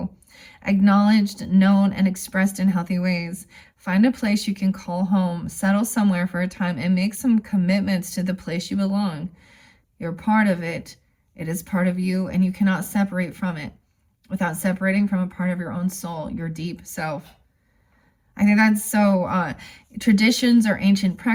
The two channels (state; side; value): identical; both; correlation 1.00